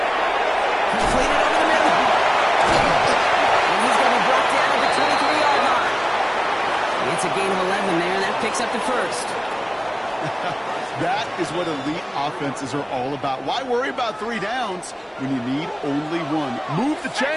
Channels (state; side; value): identical; both; correlation 1.00